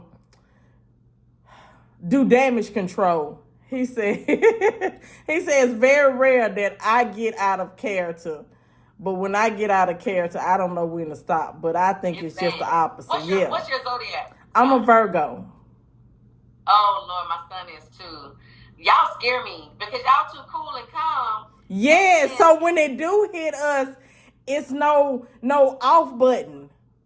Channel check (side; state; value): both; identical; correlation 1.00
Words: do damage control. He said it's very rare that I get out of character. But when I get out of character, I don't know when to stop. But I think it's just the opposite. What's your zodiac? I'm a Virgo. Oh Lord, my son is too. Y'all scare me because y'all too cool and calm. Yeah, so when they do hit us, it's no off button.